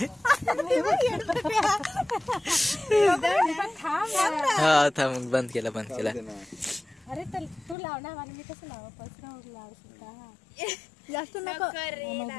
हा थांब. बंद केला. अरे तू लाव ना. मला मी कसं लाव. जास्त नको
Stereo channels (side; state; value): right; drops out; at 7.8 s